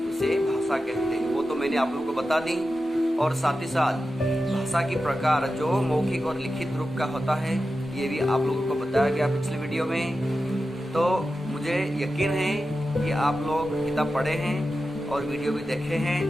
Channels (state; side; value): normal; both; correlation 0.92